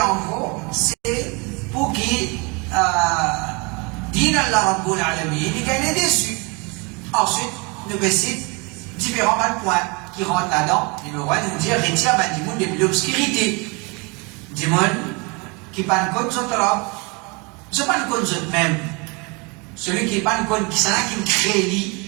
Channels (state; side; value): quieter; left; 29.8 dB